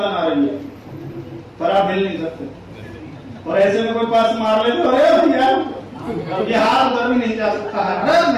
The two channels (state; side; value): identical; both; correlation 1.00